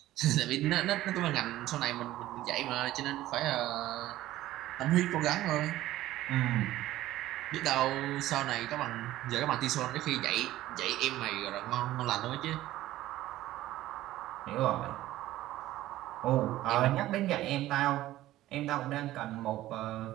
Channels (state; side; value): quieter; left; 15.1 dB